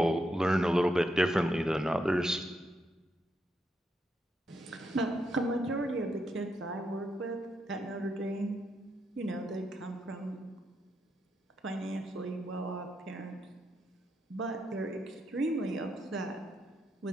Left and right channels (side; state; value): both; normal; correlation 0.81